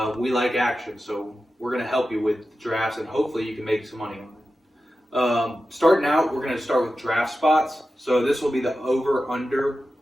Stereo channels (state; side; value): normal; both; correlation 0.93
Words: we like action, so we're going to help you with drafts, and hopefully you can make some money on it. Starting out, we're going to start with draft spots. So this will be the over/under